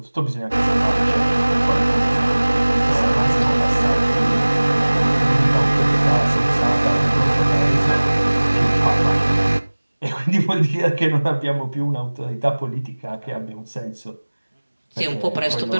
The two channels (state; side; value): inverted; both; correlation -1.00